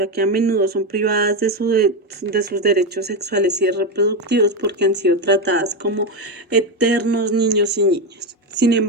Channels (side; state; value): both; normal; correlation 0.10